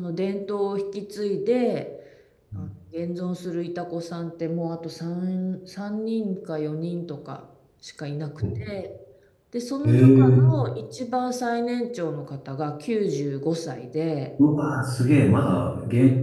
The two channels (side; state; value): both; identical; correlation 1.00